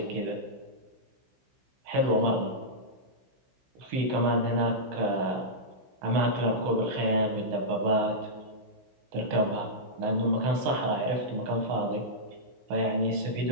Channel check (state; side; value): late; left; 16 ms